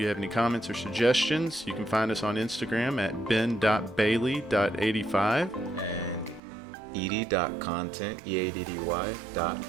have any comments or suggestions, you can find us on Instagram at ben.bailey.85. Eaddy.content, E-A-D-D-Y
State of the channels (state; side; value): drops out; left; at 6.4 s